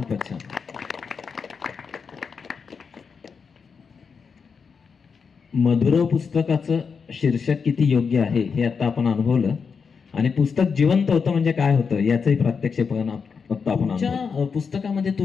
छान. मधुरव पुस्तकाचं शीर्षक किती योग्य आहे हे आता आपण अनुभवलं. आणि पुस्तक जिवंत होतं म्हणजे काय होतं याचंही प्रात्यक्षिकपण आपण पुस्तकामध्ये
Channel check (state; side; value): quieter; right; 5.7 dB